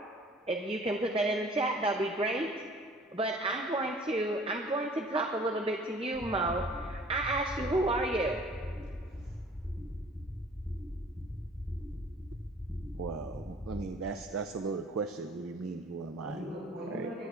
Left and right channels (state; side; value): normal; both; correlation 0.52